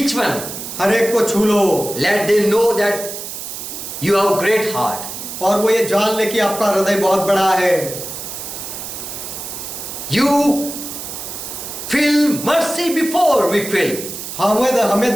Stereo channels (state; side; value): noise; right; hiss, 8 dB below the sound